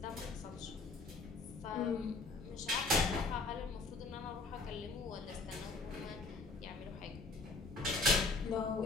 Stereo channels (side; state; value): right; quieter; 3.5 dB